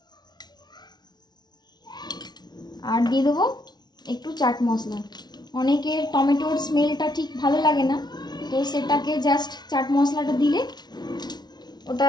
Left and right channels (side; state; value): right; late; 0.20 ms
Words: আর দিয়ে দেবো একটু চাট মশলা। অনেকের টমেটোর স্মেলটা ঠিক ভালো লাগে না, তো সেটাকে জাস্ট চাট মশলাটা দিলে ওটা